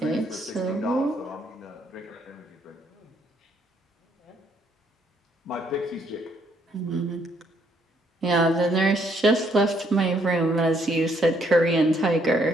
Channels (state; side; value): normal; both; correlation 0.69